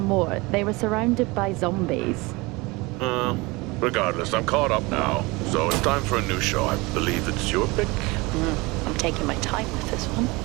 more? They were surrounded by zombies. Regardless, I'm caught up now. So it's time for a new show. I believe it's your pick. I'm taking my time with this one.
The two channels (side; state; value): left; quieter; 24.1 dB